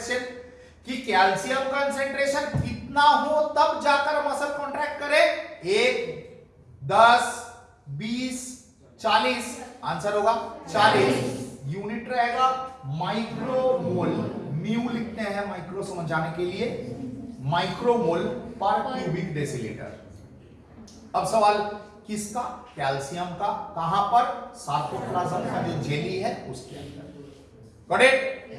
कि कैल्शियम कंसेंट्रेशन कितना हो तब जाकर मसल कॉन्ट्रैक्ट करे, 1, 10, 20, 40, आंसर होगा 40। यूनिट रहेगा माइक्रोमोल, म्यू लिखते हैं माइक्रो समझाने के लिए, माइक्रोमोल पर क्यूबिक डेसीलीटर। अब सवाल किसका? कैल्शियम का। कहां पर? सार्कोप्लाज्म का जो जेली है उसके अंदर। Got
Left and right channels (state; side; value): identical; both; correlation 1.00